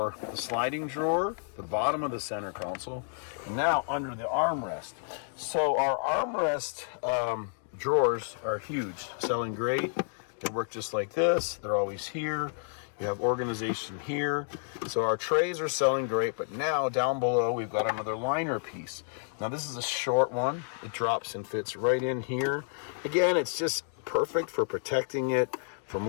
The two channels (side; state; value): right; silent; 58 dB below the other